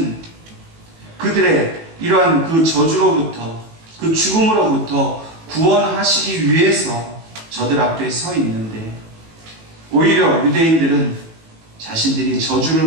그들의 이러한 그 저주로부터, 그 죽음으로부터 구원하시기 위해서 저들 앞에 서 있는데, 오히려 유대인들은 자신들이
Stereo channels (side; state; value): left; late; 18 ms